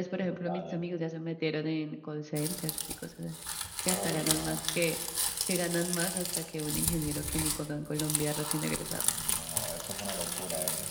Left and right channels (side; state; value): both; identical; correlation 1.00